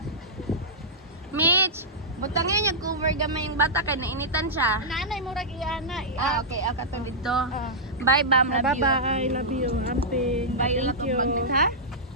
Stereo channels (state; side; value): normal; both; correlation -0.11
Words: Mitch, butangin niya cover gamay yung bata kay nainitan siya. Nanay mo rag iana. Okay, ako to dito. Bye, Bam. Love you. Bye-bye. Love you. Amping. Bye, Thank you. magnet, ha?